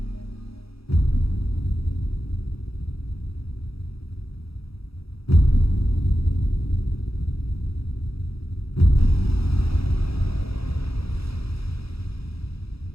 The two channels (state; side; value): late; right; 0.77 ms